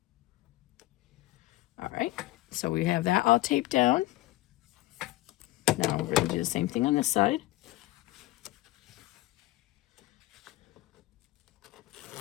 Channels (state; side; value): quieter; right; 18.1 dB